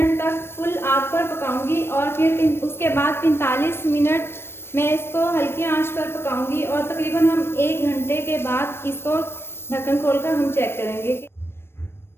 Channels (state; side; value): late; right; 0.12 ms